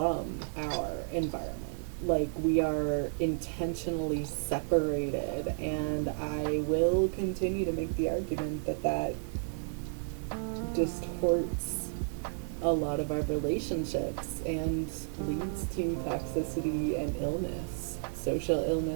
our environment. Like, we are intentionally separated, and I will continue to make the argument that that distorts a lot of our relationships and leads to toxicity and illness, social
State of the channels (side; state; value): left; silent; 56 dB below the other